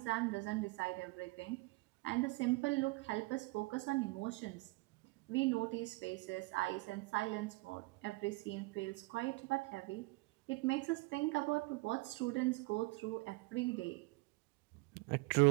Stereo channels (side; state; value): left; quieter; 23.9 dB